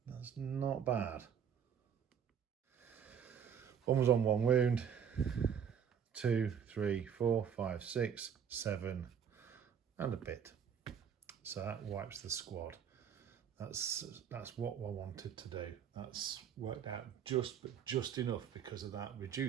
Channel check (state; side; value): quieter; left; 7.9 dB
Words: That's not bad. 1 was on 1 wound, 2, 3, 4, 5, 6, 7, and a bit. So that wipes the squad. That's what I wanted to do. That's worked out just enough because of that